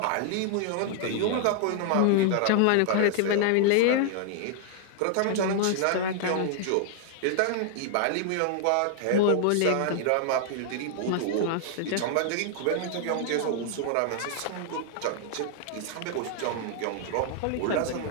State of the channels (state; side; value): different; both; correlation -0.01